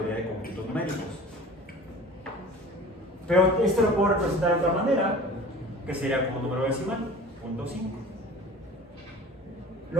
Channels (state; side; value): normal; both; correlation 0.42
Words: de conjuntos numéricos. Pero esto lo puedo representar de otra manera, que sería como un número decimal, 0.5.